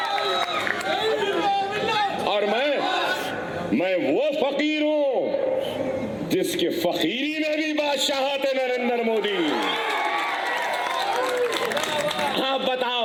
और मैं वो फकीर हूं जिसके फकीरी में भी बादशाहत है नरेंद्र मोदी। आप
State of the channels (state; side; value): identical; both; correlation 1.00